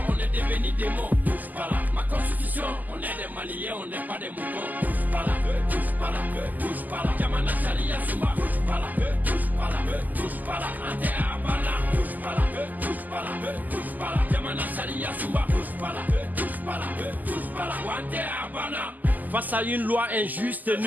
on est devenu des mots. Touche pas là, ma constitution, on est des Maliens, on n'est pas des moutons. Touche pas là, touche pas là, touche pas là. Yamana Sharia Souma, touche pas là, touche pas là, touche pas là. Ante Abana, touche pas là, touche pas là, touche pas là. Yamana Sharia Souma, touche pas là, touche pas là, touche pas là. Ante Abana. Face à une loi injuste,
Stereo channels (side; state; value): left; late; 0.083 ms